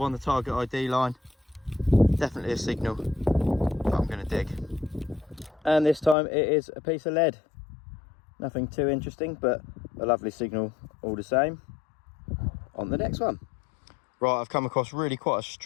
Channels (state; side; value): drops out; right; at 6.2 s